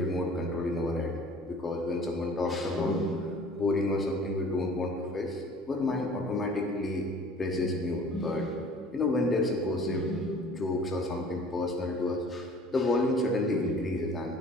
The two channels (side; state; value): both; normal; correlation 0.49